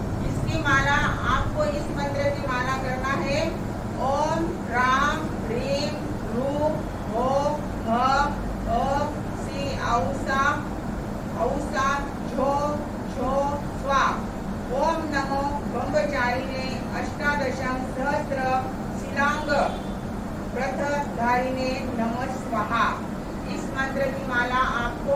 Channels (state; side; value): identical; both; correlation 1.00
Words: इसकी माला आपको इस मंत्र की माला करना है। ओम राम ह्रीम रूम हो ह सी औसा औसा झो झो स्वा। ओम नमो ब्रह्मचारिणे अष्टादशं सहस्र शिलांग प्रथ ब्रह्मचारिणे नमः स्वाहा। इस मंत्र की माला आपको